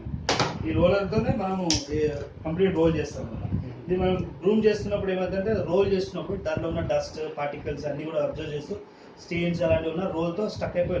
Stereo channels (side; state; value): both; identical; correlation 1.00